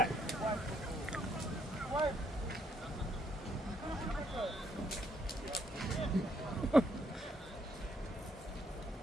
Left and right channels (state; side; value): normal; both; correlation 0.71